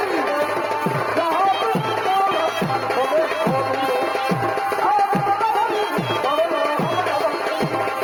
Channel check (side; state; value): both; identical; correlation 1.00